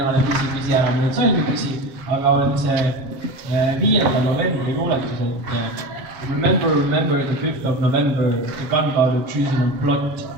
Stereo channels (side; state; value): left; late; 7.3 ms